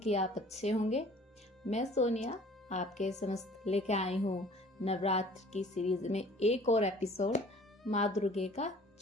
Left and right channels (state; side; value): normal; both; correlation 0.51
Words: आप अच्छे होंगे। मैं सोनिया आपके समस्त लेके आई हूँ नवरात्र की सीरीज में एक और एपिसोड, माँ दुर्गे का